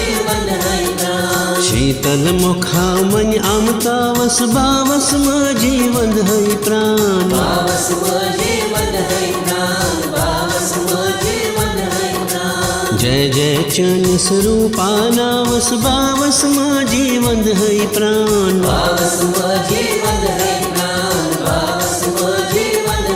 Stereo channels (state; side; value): identical; both; correlation 1.00